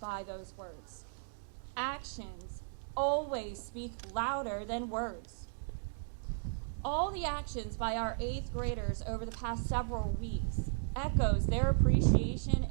those words. Actions always speak louder than words. All the actions by our 8th graders over the past several weeks echoes their appreciation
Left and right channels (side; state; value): left; silent; digital silence